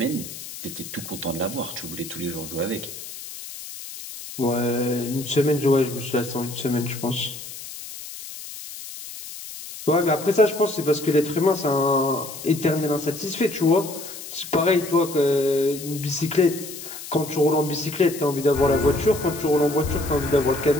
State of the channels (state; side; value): noise; left; hiss, 12 dB below the sound